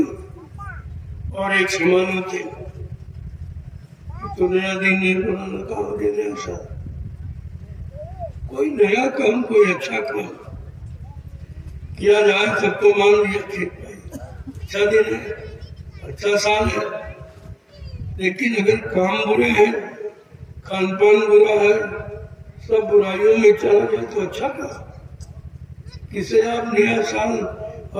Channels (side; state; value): both; identical; correlation 1.00